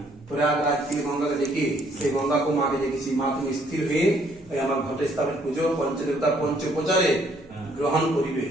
প্রয়াগরাজ থেকে গঙ্গাকে ডেকে সেই গঙ্গাকে মাকে ডেকেছি। মা তুমি স্থির হয়ে ওই আমার ঘটে স্থাপিত পুজো পঞ্চদেবতা পঞ্চোপচারে গ্রহণ করিবে।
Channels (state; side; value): noise; right; hum, 29 dB below the sound